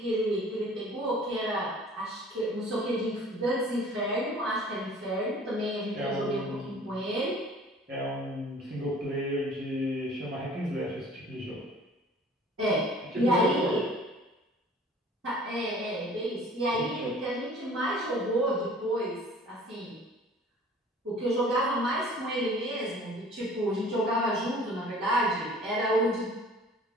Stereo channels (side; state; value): both; normal; correlation 0.49